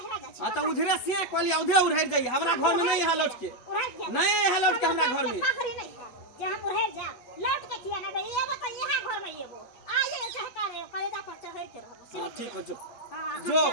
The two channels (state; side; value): late; right; 8.2 ms